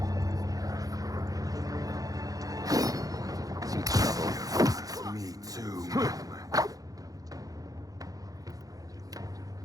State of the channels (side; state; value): left; late; 0.17 ms